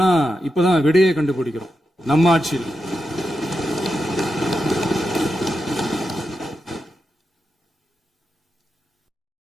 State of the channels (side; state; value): both; normal; correlation 0.88